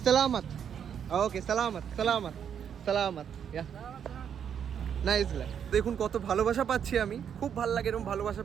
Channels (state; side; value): quieter; left; 8.2 dB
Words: Salamat. Okay, salamat. Yeah. Nice. দেখুন কত ভালোবাসা পাচ্ছি আমি, খুব ভালো লাগে এরকম ভালোবাসা